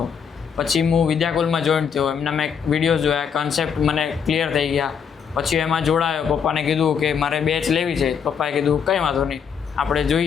પછી હું વિદ્યાકુલમાં જોઈન થયો, એમના મેં વિડીયોઝ જોયા, કન્સેપ્ટ મને ક્લિયર થઈ ગયા. પછી એમાં જોડાયો, પપ્પાને કીધું કે મારે બેચ લેવી છે. પપ્પાએ કીધું કંઈ વાંધો નહીં, આપણે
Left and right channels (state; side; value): quieter; right; 7.1 dB